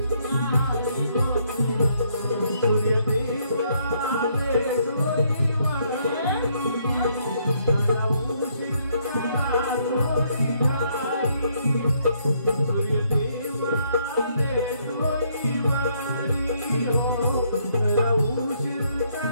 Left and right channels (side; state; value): both; inverted; correlation -0.70